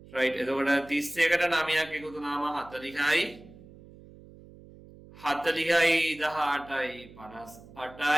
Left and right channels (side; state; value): right; noise; hum, 21 dB below the sound